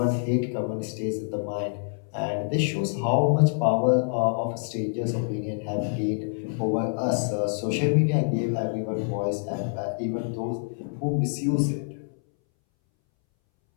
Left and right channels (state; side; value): silent; right; 61 dB below the other